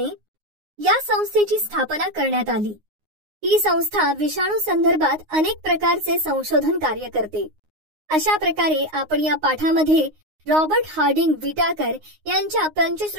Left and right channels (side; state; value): left; late; 9.6 ms